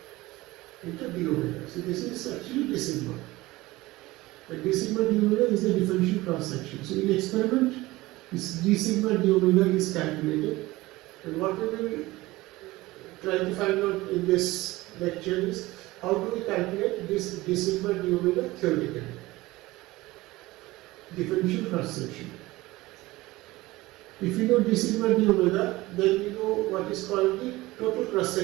into d omega. So this is actually d sigma. And d sigma d omega is the differential cross section. So in experiment, this d sigma d omega is calculated, and what we will try to find out in this lecture is how do we calculate this d sigma d omega theoretically. Differential cross section. If you know d sigma d omega, then you know what is called the total cross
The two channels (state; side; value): quieter; left; 19.4 dB